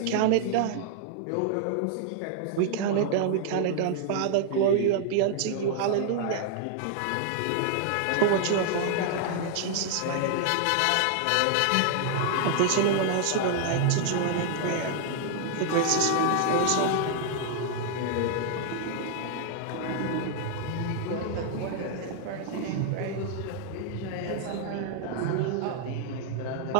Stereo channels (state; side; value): different; both; correlation 0.00